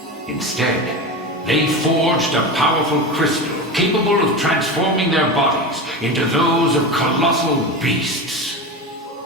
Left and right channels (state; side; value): normal; both; correlation 0.24